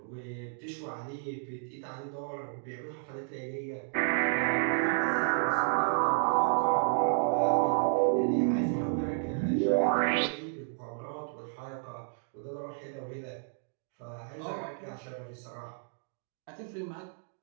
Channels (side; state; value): left; silent; digital silence